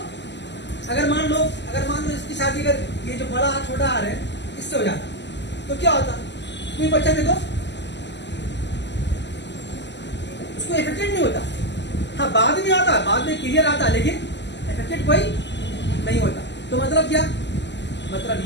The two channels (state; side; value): late; right; 0.51 ms